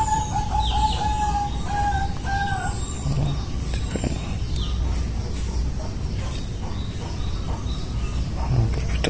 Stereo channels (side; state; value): both; identical; correlation 1.00